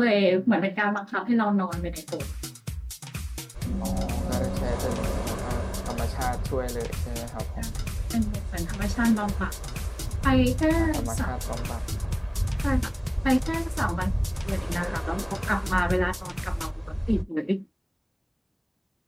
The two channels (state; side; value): identical; both; correlation 1.00